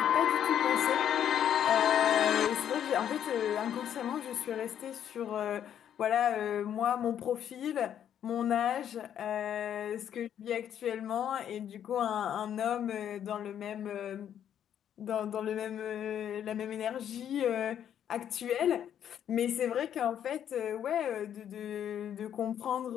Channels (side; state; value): right; quieter; 9.7 dB